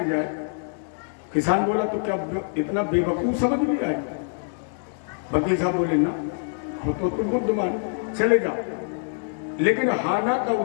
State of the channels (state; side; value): silent; right; digital silence